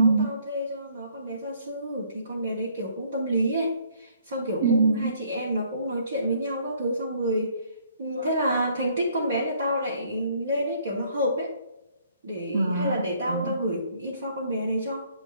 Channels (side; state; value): both; inverted; correlation -0.63